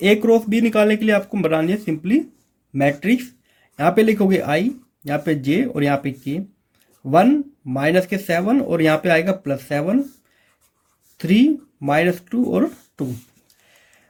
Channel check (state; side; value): identical; both; correlation 1.00